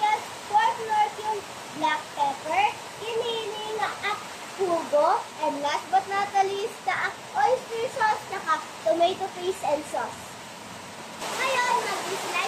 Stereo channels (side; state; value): both; identical; correlation 1.00